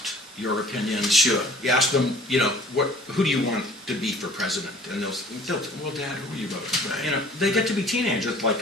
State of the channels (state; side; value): normal; both; correlation 0.51